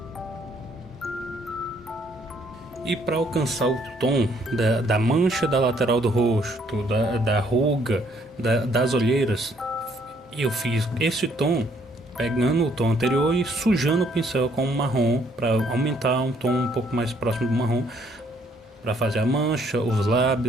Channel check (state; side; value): normal; both; correlation 0.66